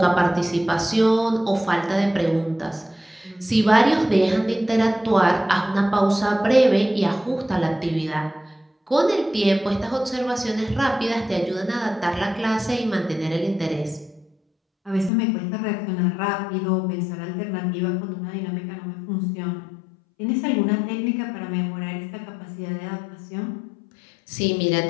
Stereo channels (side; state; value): right; drops out; at 15.1 s